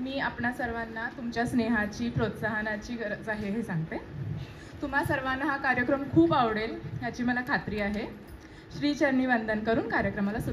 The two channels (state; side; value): identical; both; correlation 1.00